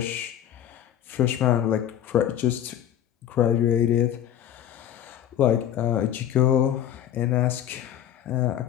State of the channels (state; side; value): quieter; right; 10.7 dB